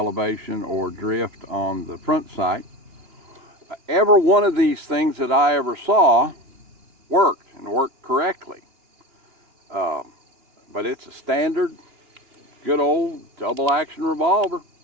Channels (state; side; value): late; left; 2.9 ms